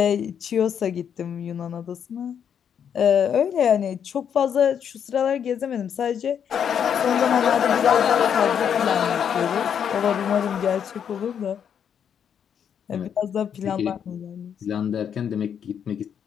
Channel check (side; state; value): right; quieter; 8.2 dB